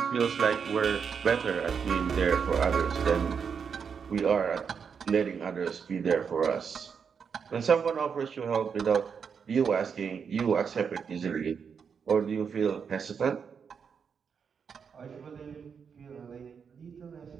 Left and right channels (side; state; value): left; quieter; 6.5 dB